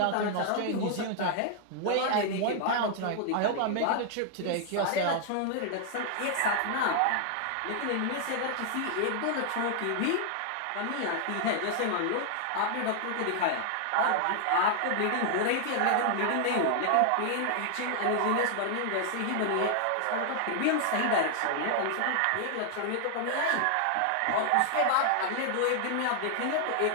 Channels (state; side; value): different; both; correlation 0.00